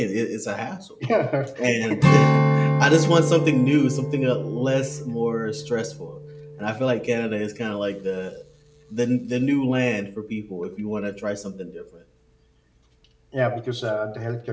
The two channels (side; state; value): both; identical; correlation 1.00